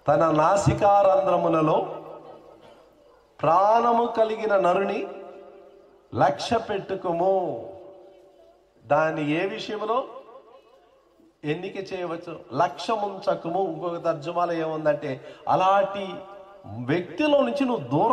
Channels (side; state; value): both; identical; correlation 1.00